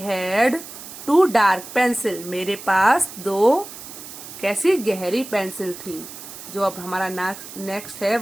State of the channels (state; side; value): noise; right; hiss, 13 dB below the sound